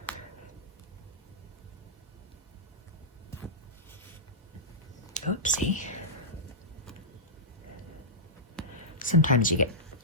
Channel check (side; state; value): both; normal; correlation -0.13